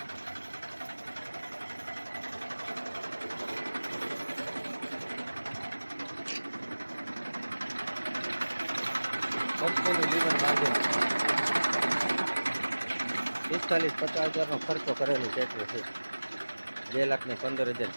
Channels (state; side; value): inverted; both; correlation -1.00